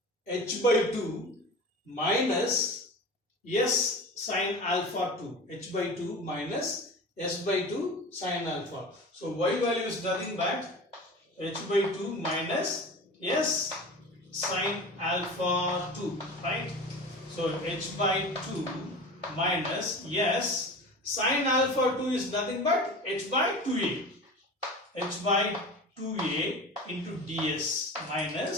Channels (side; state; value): both; normal; correlation 0.33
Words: H by 2 minus S sine alpha 2. H by 2 minus S by 2 sine alpha. So Y value is nothing but H by 2 minus S sine alpha 2, right? So H by 2 minus S sine alpha 2 is nothing but H by 2a. H by 2a into ds